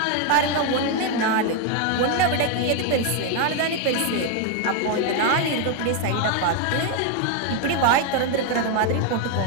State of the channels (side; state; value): both; different; correlation 0.01